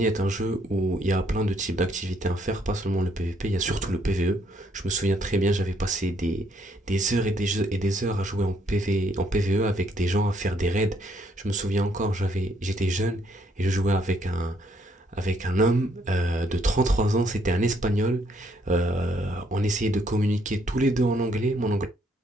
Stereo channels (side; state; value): both; normal; correlation 0.69